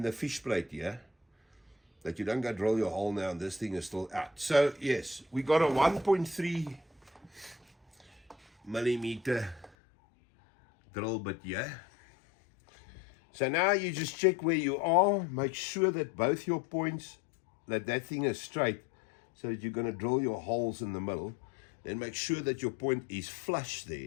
fish plate here, that you don't go drill your hole now and this thing is still out. So yes, we got a 1.3 millimeter drill bit here. So now you just check where you are, make sure that both your points, that thing is straight, so that you're going to drill your holes in the middle. Then make sure that your point is flush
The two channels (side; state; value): right; drops out; at 9.7 s